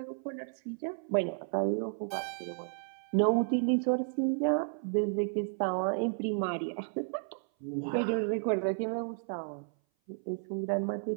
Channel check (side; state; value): left; silent; 56 dB below the other